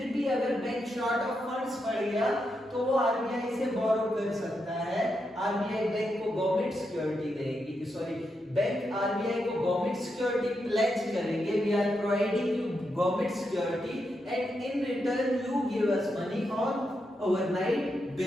भी अगर बैंक शॉर्ट ऑफ फंड्स पड़ गया तो वो आरबीआई से बोरो कर सकता है। आरबीआई बैंक को गवर्नमेंट सिक्योरिटी देगी, सॉरी बैंक आरबीआई को गवर्नमेंट सिक्योरिटी प्लेज करेंगे, we are providing you government security and in return you give us money on overnight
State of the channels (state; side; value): normal; both; correlation 0.84